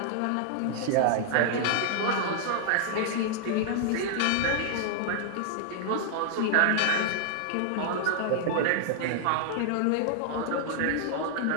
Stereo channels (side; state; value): both; different; correlation -0.01